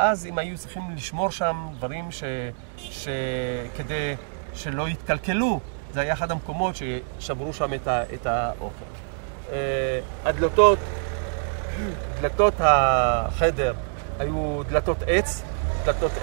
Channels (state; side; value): silent; left; digital silence